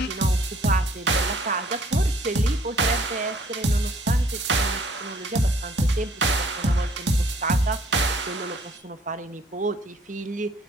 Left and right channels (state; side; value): normal; both; correlation 0.60